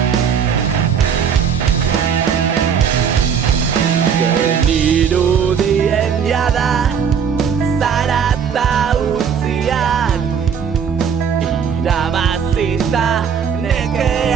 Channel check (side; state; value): left; quieter; 7.3 dB